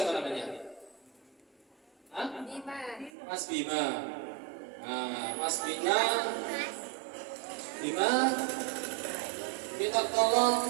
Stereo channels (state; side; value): drops out; left; at 3.1 s